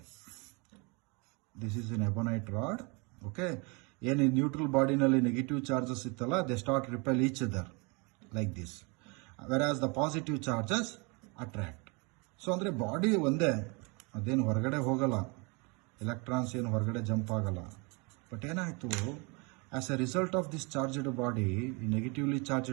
this is an ebonite rod. Okay, ಏನು neutral ಬಾಡಿನಲ್ಲಿ negative charges ಇತ್ತಲ್ಲ, they start repel each other like this, whereas the positive charges attract. So ಅಂದರೆ body ಒಂದೇ, ಅದೇನು ಹೊರಗಡೆ ಹೋಗಲ್ಲ, ಎಲೆಕ್ಟ್ರಾನ್ಸ್ ಏನು ಹೊರಗಡೆ ಜಂಪ್ ಆಗಲ್ಲ. ಬಟ್ ಏನಾಯಿತು, as a result of this charged body, ಈ ನೆಗೆಟಿವ್ಲಿ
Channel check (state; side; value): quieter; left; 30.3 dB